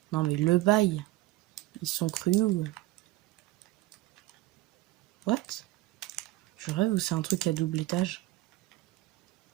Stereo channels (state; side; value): quieter; left; 17.4 dB